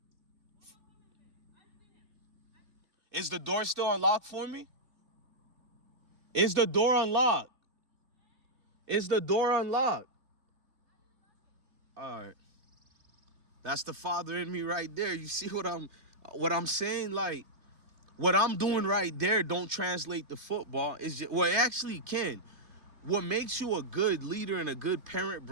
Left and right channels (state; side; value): late; left; 2.7 ms